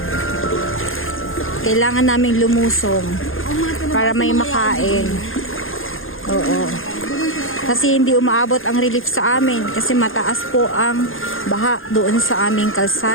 Kailangan naming lumusong para may makain. Oo. Kasi hindi umaabot ang relief sa amin kasi mataas po ang baha doon sa aming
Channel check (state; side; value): late; right; 0.59 ms